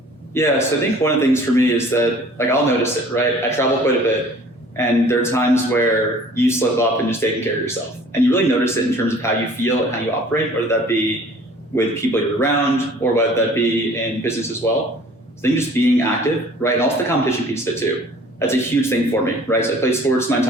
Yeah, so I think one of the things for me is that, like, I'll notice it, right? I travel quite a bit, and there are times where you slip up and just taking care of yourself. And you really notice it in terms of how you feel and how you operate, whether that be with people you're around or whether that be in business as well. So I think just being active, right? And also the competition piece of it too. That's a huge thing for me, right? So I played sports my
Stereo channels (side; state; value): both; normal; correlation 0.50